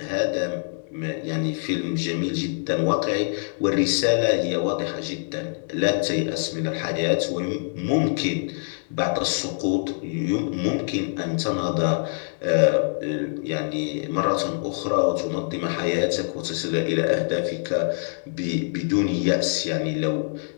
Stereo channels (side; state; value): right; silent; digital silence